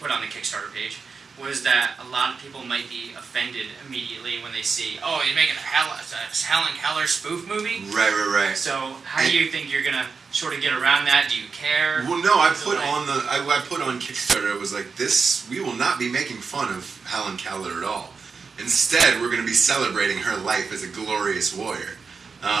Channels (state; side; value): quieter; left; 5.1 dB